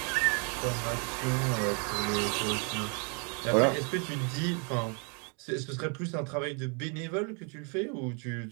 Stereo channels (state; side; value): quieter; left; 35.8 dB